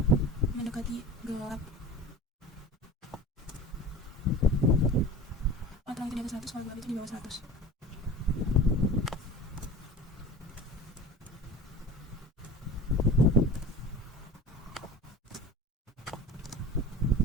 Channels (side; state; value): both; normal; correlation 0.36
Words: mendekati gelap. Kalau itu di atas 100, kalau gelap itu di bawah 100.